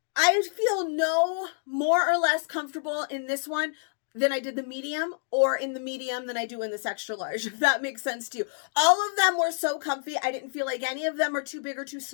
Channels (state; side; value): silent; right; digital silence